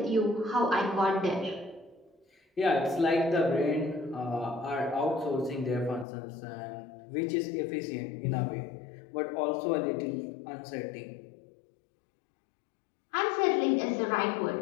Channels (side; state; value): right; drops out; at 6.1 s